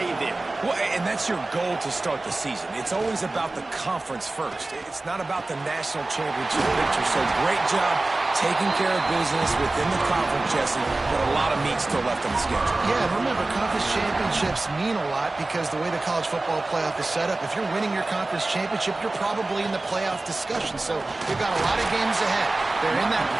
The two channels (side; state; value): left; quieter; 3.0 dB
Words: there. Well, and that's your goal to start the season. It's always about the conference first. It's not about the national championship picture. So great job taking care of business within the conference, Jesse, but a lot of meat still left on the schedule. Yeah, and remember, conference championships mean a lot because the way the college football playoff is set up, if you're winning your conference championship, you're probably in the playoff discussion. So they've got a lot of games ahead. They're in that